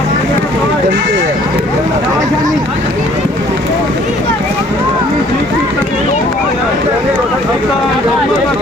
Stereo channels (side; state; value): both; normal; correlation 0.58